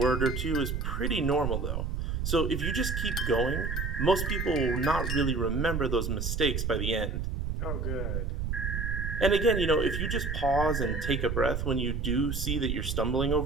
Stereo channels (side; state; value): right; noise; rumble, 2 dB below the sound